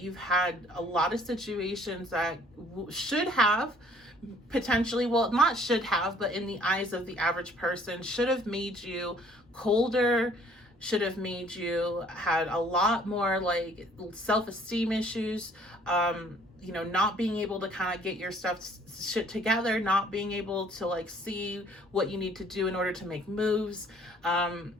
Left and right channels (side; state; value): both; normal; correlation 0.58